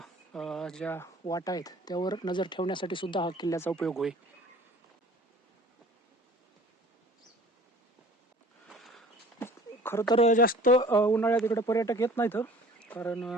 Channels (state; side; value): normal; both; correlation 0.47